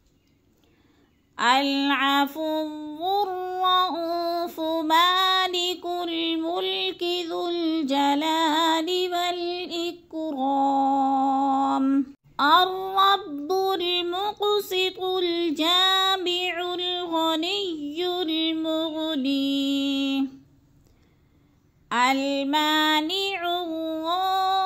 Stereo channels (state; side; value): identical; both; correlation 1.00